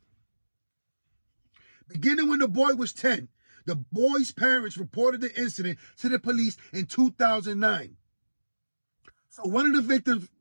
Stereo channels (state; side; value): inverted; both; correlation -1.00